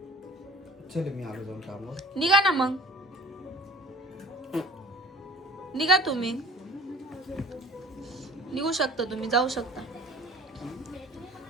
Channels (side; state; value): both; normal; correlation 0.47